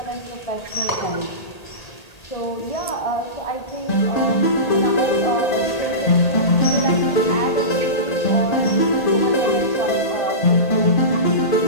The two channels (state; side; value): late; right; 1.8 ms